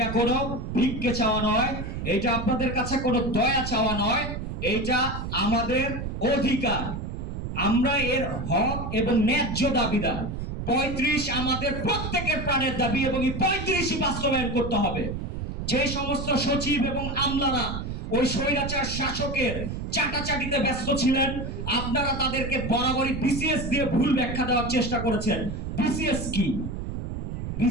কোনো ভিক্ষে চাওয়া নয়, এটা আপনাদের কাছে কোনো দয়া চাওয়া নয়, এটা আমাদের অধিকার। আমরা এর হক এবং ন্যায্য দাবিদার। 35 আমাদের প্রত্যেকের প্রাণের দাবি এবং এই 35ই বাস্তবায়ন করতে হবে। যে সমস্ত সচিব এবং আমলারা ওই স্বৈরাচার শাসকের চাটাচাটিতে ব্যস্ত ছিলেন, আপনারা তাদেরকে বরাবরই বিসিএস দিয়ে ভুল ব্যাখ্যা দেওয়ার চেষ্টা করেছেন। বিসিএস কি?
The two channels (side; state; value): right; noise; rumble, 5 dB below the sound